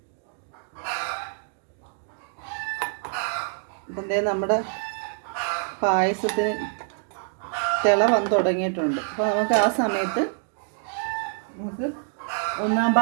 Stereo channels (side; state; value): left; silent; digital silence